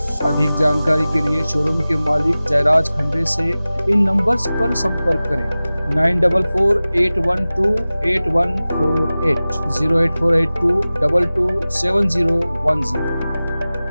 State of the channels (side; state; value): both; inverted; correlation -0.97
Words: अधिक जानकारी के लिए शोरूम के मालिक जयराज खंडे से इन नंबर्स पर संपर्क करें। 9448128148, 08482227010।